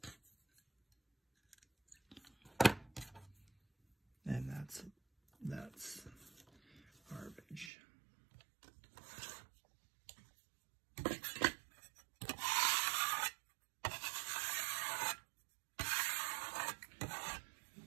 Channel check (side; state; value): left; drops out; at 7.7 s